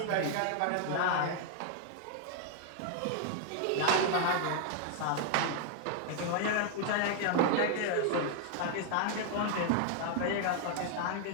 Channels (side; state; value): both; different; correlation 0.00